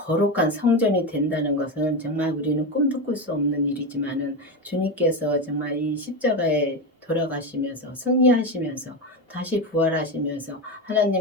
성전이 된다는 것은 정말 우리는 꿈도 꿀 수 없는 일이지만은 주님께서 정말 이 십자가에 돌아가시면서 승리하시면서 다시 부활하시면서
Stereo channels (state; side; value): normal; both; correlation 0.16